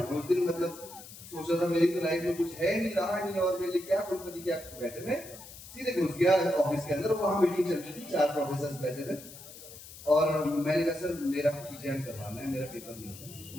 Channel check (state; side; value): noise; left; hiss, 16 dB below the sound